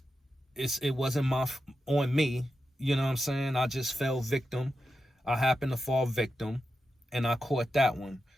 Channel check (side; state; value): both; normal; correlation 0.89